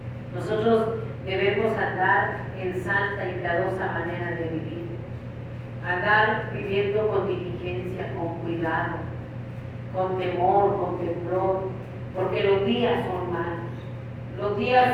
Nosotros debemos andar en santa y piadosa manera de vivir, andar viviendo con diligencia, con cuidado, con temor, con temblor, porque los días son malos. Los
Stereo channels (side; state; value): both; identical; correlation 1.00